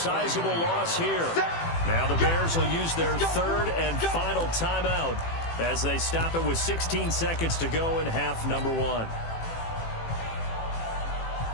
loss here. Now the Bears will use their third and final timeout as they stop it with 16 seconds to go in half number one.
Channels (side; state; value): right; late; 18 ms